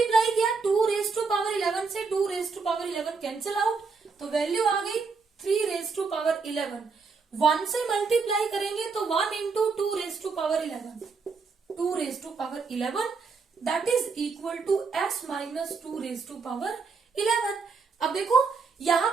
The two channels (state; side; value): quieter; left; 4.8 dB